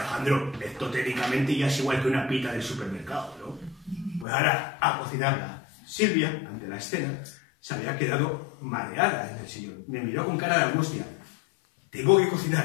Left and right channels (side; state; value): right; drops out; at 4.2 s